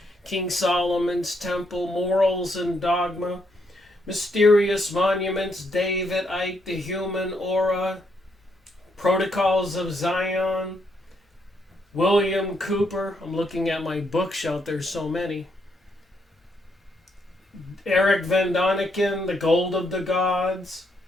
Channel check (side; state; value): both; normal; correlation 0.76